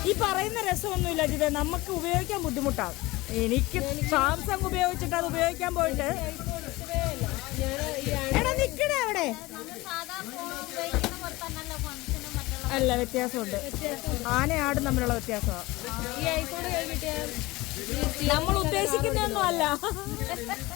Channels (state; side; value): quieter; right; 20.6 dB